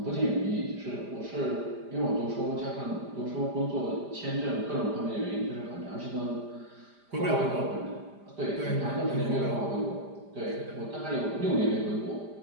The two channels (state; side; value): late; left; 5.0 ms